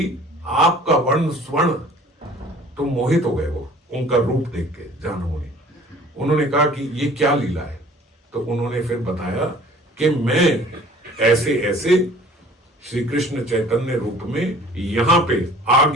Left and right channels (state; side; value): normal; both; correlation 0.50